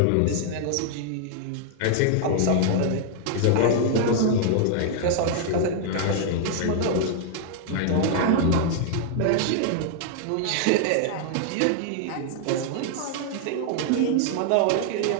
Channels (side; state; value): both; different; correlation 0.00